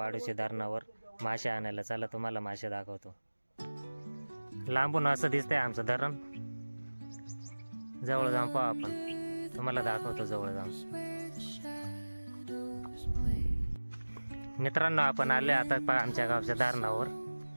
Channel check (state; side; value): inverted; both; correlation -1.00